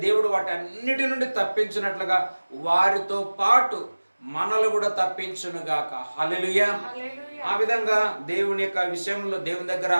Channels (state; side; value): inverted; both; correlation -1.00